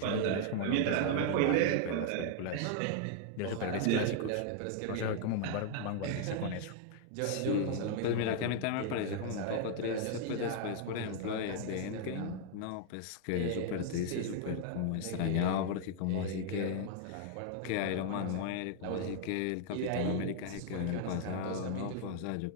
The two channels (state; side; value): different; both; correlation 0.00